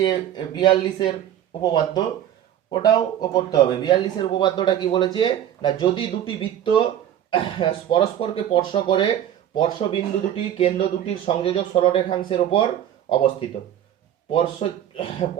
42 উপপাদ্য। ওটাও করতে হবে। 42 উপপাদ্যটা কি বলেছে না, যদি দুটি বৃত্ত পরস্পরকে স্পর্শ করে, স্পর্শবিন্দু দুটি কেন্দ্র দুটির সংযোজক সরলরেখাংশের উপর অবস্থিত।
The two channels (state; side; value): quieter; left; 10.7 dB